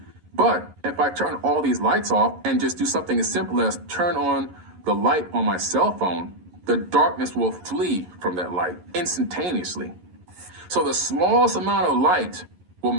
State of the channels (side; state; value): left; late; 11 ms